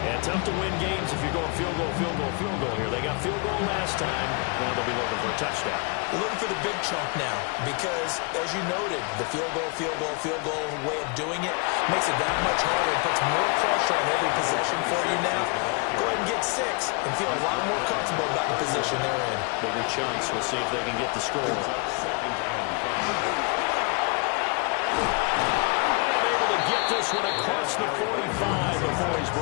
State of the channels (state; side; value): quieter; right; 32.0 dB